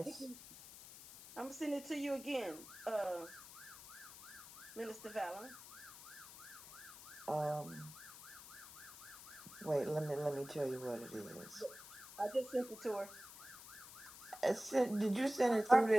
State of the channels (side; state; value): left; noise; hiss, 15 dB below the sound